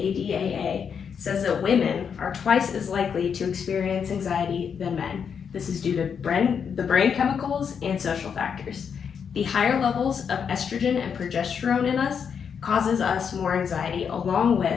says that women are twice as likely to experience anxiety than men. This is due to the brain chemicals and social factors. The higher levels of estrogen and progesterone in us causes us more anxiety, along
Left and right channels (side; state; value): right; quieter; 7.0 dB